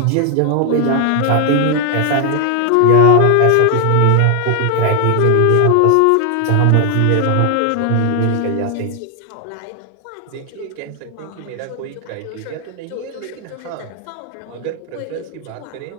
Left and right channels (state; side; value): different; both; correlation 0.00